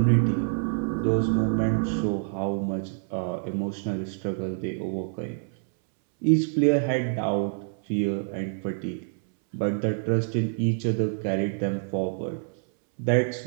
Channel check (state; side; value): silent; left; 60 dB below the other